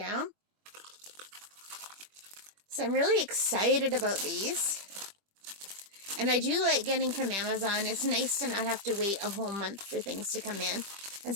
So I'm really excited about these. And I do like getting from Amazon. It's nice to not have to wait a whole month for things to come in. And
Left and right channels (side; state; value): left; late; 25 ms